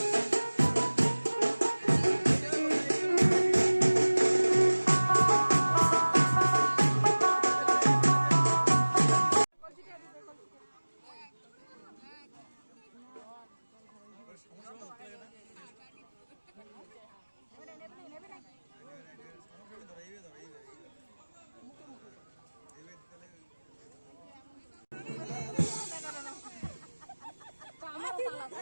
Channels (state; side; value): inverted; both; correlation -1.00